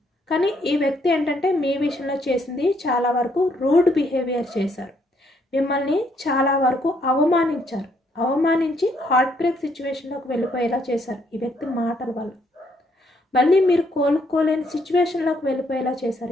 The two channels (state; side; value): normal; both; correlation 0.71